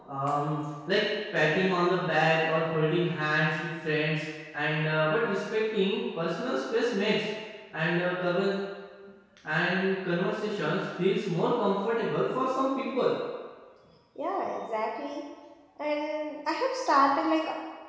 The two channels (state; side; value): identical; both; correlation 1.00